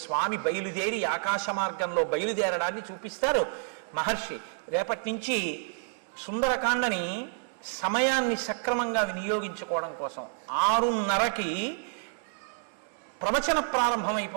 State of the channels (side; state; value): left; silent; 58 dB below the other